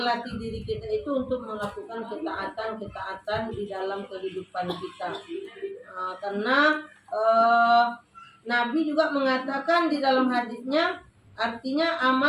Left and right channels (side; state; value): both; identical; correlation 1.00